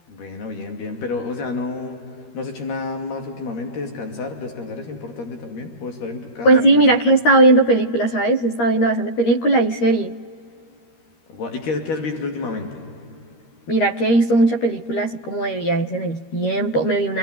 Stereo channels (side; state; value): right; late; 13 ms